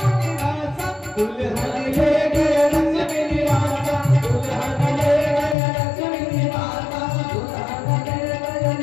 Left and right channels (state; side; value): drops out; right; at 5.6 s